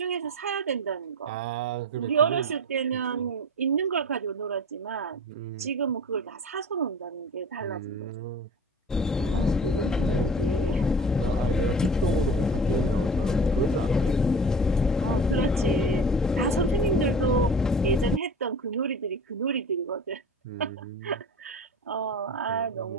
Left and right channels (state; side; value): normal; both; correlation 0.37